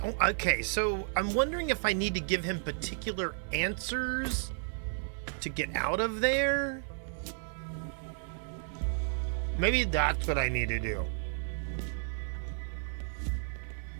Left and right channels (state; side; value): silent; left; digital silence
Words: Okay, so I'm wondering if I need to give him particular answers to get out of there. Maybe that's what I need to do.